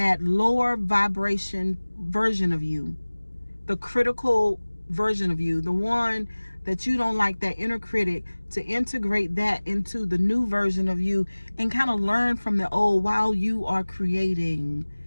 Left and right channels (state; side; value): inverted; both; correlation -1.00